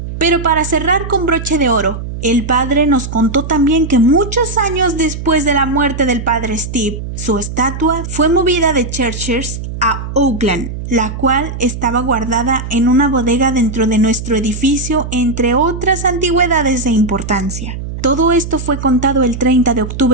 Pero para cerrar con broche de oro, el padre nos contó también que muchos años después de la muerte del padre Steve, su estatua fue movida de Cheshire a Oakland, la cual estaba guardada en una bodega dentro de nuestro edificio, entre otras antigüedades de importancia. Todo esto fue contado el 30 de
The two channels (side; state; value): right; noise; hum, 7 dB below the sound